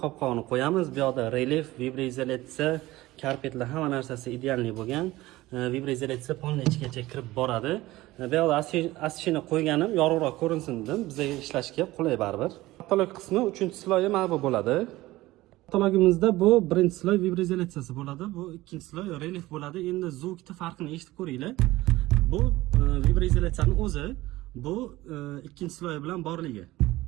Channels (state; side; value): quieter; left; 18.0 dB